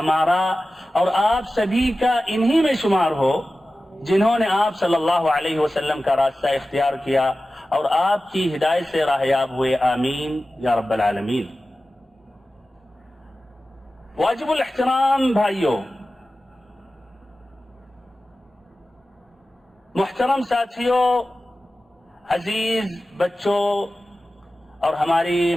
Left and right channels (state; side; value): normal; both; correlation 0.95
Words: اور آپ سبھی کا انہی میں شمار ہو جنہوں نے آپ صلی اللہ علیہ وسلم کا راستہ اختیار کیا اور آپ کی ہدایت سے راہیاب ہوئے. آمین یا رب العالمین. واجب الاحترام بھائیوں، محترم ساتھیوں، عزیز بچوں اور ہماری